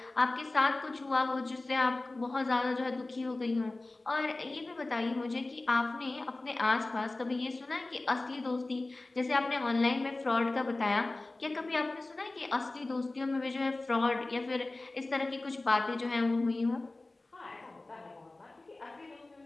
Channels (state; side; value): quieter; right; 3.0 dB